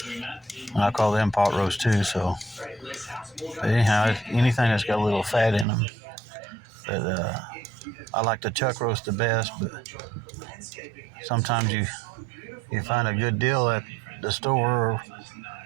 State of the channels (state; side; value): drops out; left; at 5.7 s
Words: and I call them pot roast too. So, but anyhow, anything that's got a little fat in them. But I like the chuck roast the best, but sometimes you find a good deal at the store, or